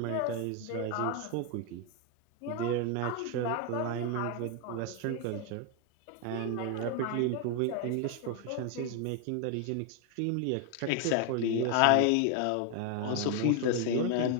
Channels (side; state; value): both; different; correlation 0.01